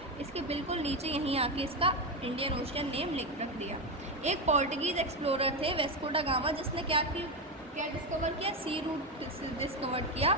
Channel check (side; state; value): both; normal; correlation 0.13